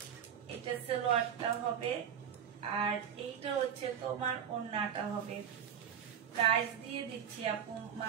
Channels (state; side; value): quieter; left; 8.5 dB